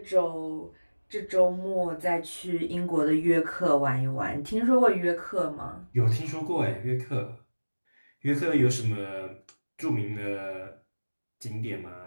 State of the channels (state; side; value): inverted; both; correlation -1.00